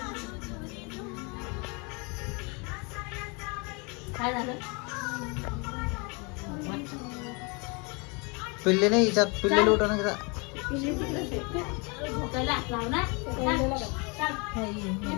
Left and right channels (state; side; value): quieter; right; 30.9 dB